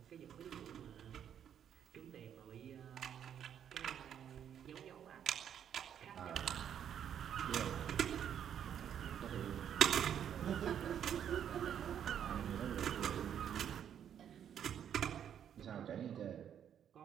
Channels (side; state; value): left; quieter; 9.1 dB